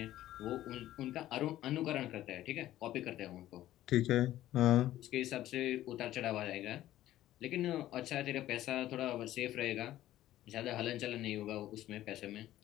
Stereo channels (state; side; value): quieter; right; 13.9 dB